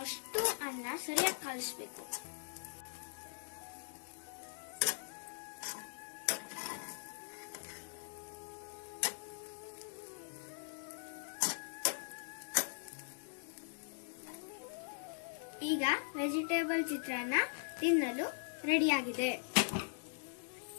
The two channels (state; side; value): silent; right; digital silence